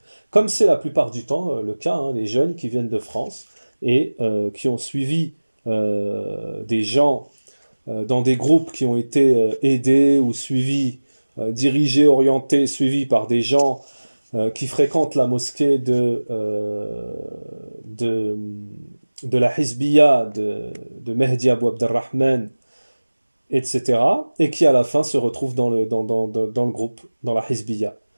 Comme c'est la plupart du temps le cas, hein, les jeunes qui viennent de France et qui ont suivi des gens dans des groupes qui ont été aidés ou suivis, dirigés, orientés, suivis par des gens qui fréquentent la mosquée de la Hizbiyya de Mehdi Abou Abdelrahman, etc. Et qui à la fin se retrouvent dans le groupe, dans la Hizbiyya.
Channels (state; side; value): inverted; both; correlation -1.00